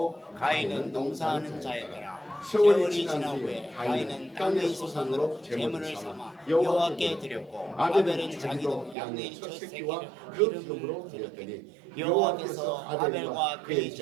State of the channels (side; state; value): left; drops out; at 9.0 s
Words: 가인은 농사하는 자였더라. 세월이 지난 후에 가인은 땅의 소산으로 제물을 삼아 여호와께 드렸고 아벨은 자기도 양의 첫 새끼와 그 기름으로 드렸더니 여호와께서 아벨과 그의